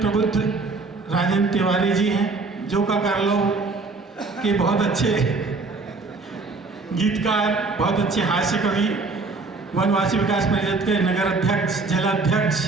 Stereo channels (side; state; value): left; quieter; 3.8 dB